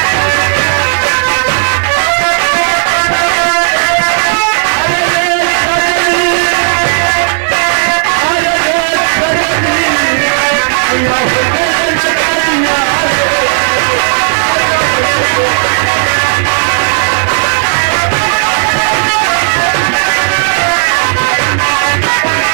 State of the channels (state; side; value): silent; left; digital silence